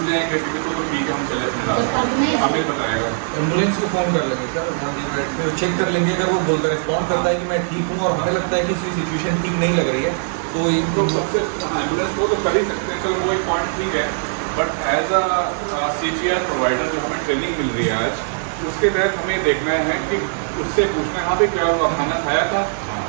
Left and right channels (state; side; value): silent; left; digital silence